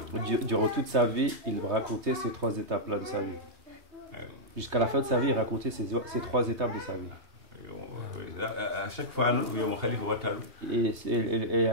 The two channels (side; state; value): left; late; 3.2 ms